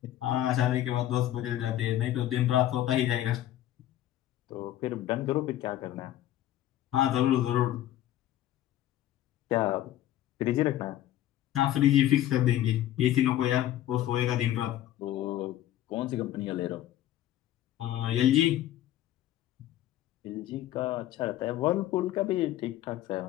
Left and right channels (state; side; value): quieter; right; 13.1 dB